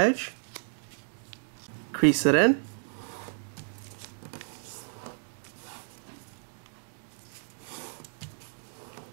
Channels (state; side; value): silent; left; 57 dB below the other